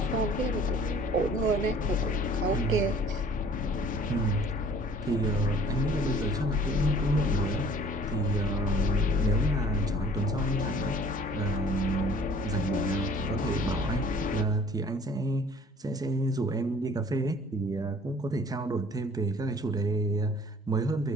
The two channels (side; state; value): both; normal; correlation 0.52